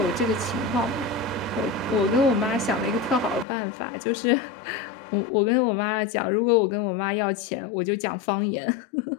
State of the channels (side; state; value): right; drops out; at 3.5 s